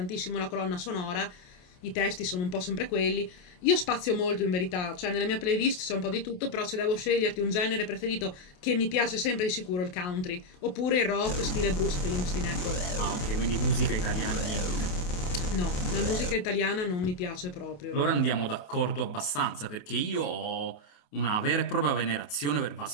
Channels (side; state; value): right; late; 28 ms